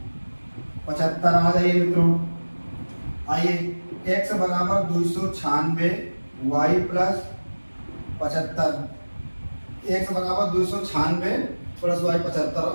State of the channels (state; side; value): inverted; both; correlation -1.00